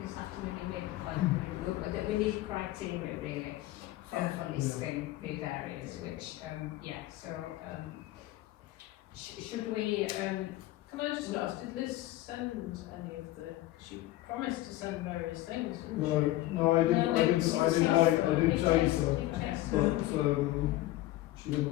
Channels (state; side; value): quieter; right; 16.3 dB